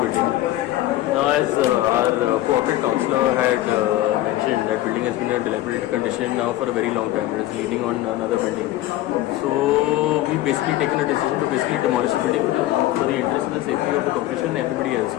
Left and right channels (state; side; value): quieter; right; 15.1 dB